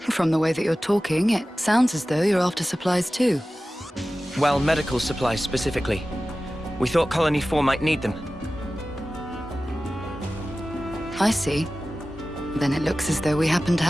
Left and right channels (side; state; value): both; normal; correlation 0.96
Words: the way that you're talking, it sounds as though you're after supplies too. Well, medical supplies specifically. We thought Colony 4 might need them. I see. Then it looks as though we happen to